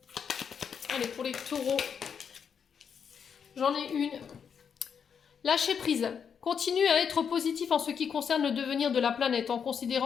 Allez, pour les taureaux. J'en ai une. Lâchez prise. Continue à être positif en ce qui concerne le devenir de la planète, en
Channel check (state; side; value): quieter; right; 7.1 dB